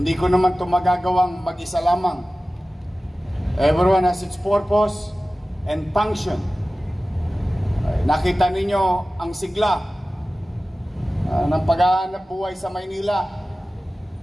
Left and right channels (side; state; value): both; normal; correlation 0.96